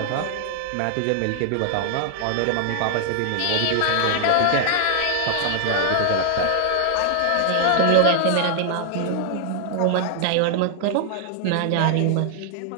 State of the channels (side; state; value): both; different; correlation 0.00